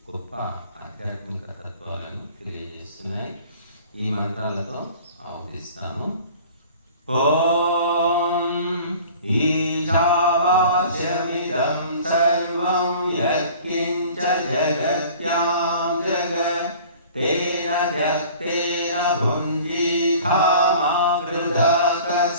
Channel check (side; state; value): both; inverted; correlation -0.46